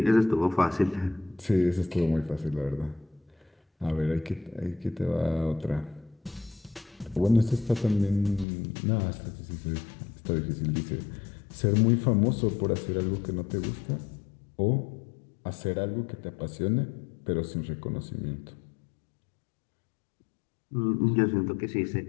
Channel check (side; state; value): right; drops out; at 8.5 s